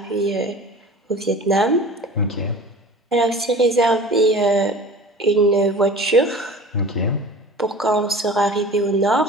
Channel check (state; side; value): normal; both; correlation 0.40